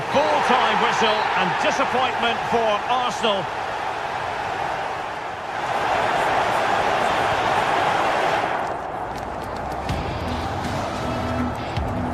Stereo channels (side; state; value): both; identical; correlation 1.00